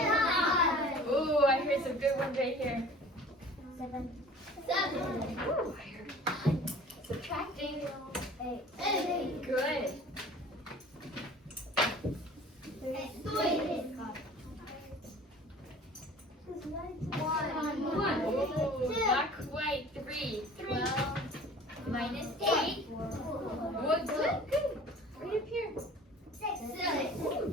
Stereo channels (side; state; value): both; normal; correlation 0.46